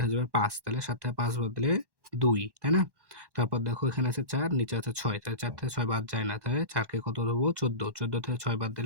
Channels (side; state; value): left; late; 1.1 ms